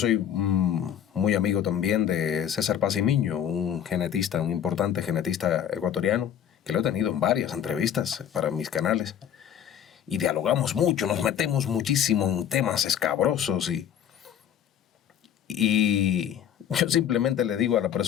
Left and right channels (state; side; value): quieter; right; 9.5 dB